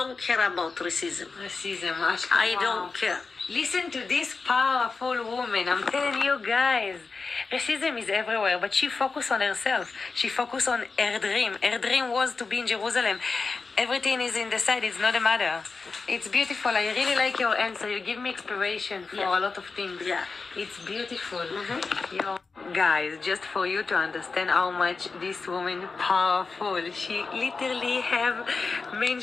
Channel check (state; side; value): quieter; right; 4.4 dB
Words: care about racism. Racism. I don't care. Listen to this powerful woman. I'm telling you guys. Racism is everywhere, but she focused on herself. She focused on her dream. Her dream was to be in Jerusalem. Everything is in the side. It's not a matter. It's beautiful. I really like your answer. You give me inspiration for a lot of things. Yeah. It's beautiful. Guys, just for you to understand how much this woman powerful. She literally have